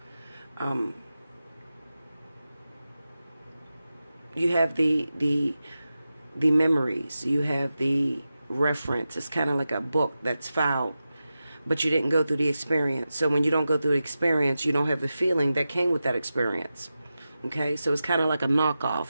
You have the memories. You have the reference. It's kind of like a book that's filed, but you didn't go through the experience. So when you don't go through the experience, you don't have the feeling that came with that experience. Okay? So it's kind of like a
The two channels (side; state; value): both; inverted; correlation -0.92